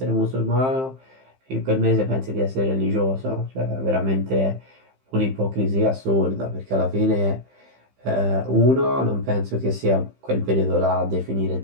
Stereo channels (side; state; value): left; late; 15 ms